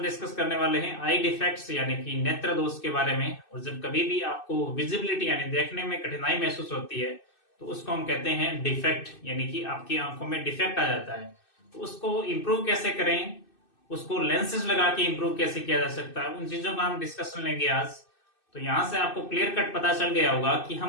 डिस्कस करने वाले हैं आई डिफेक्ट्स यानी कि नेत्र दोष के बारे में। और जब कभी भी आपको विजिबिलिटी यानी देखने में कठिनाई महसूस होती है तो उसको हम कहते हैं डिफेक्ट, यानी कि आपकी आंखों में डिफेक्ट आ जाता है। तो उसको इम्प्रूव कैसे करें, उसको लेंसेज लगा के इम्प्रूव कैसे किया जा सकता है, उन चीजों का हम डिस्कशन लेंगे आज। तो यहाँ से आपको क्लियर कट पता चल गया होगा कि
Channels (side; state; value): right; late; 2.6 ms